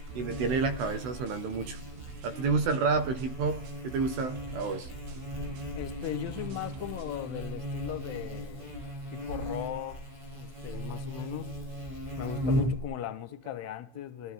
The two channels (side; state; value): left; late; 16 ms